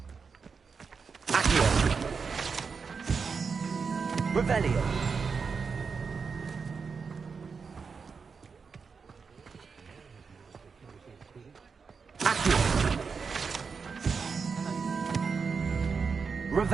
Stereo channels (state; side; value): quieter; left; 5.4 dB